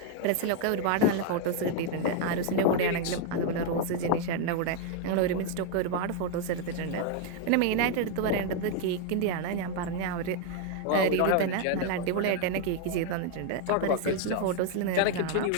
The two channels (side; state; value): both; different; correlation 0.00